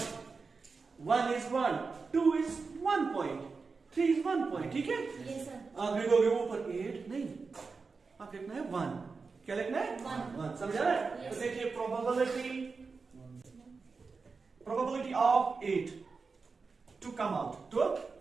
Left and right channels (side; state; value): left; quieter; 4.6 dB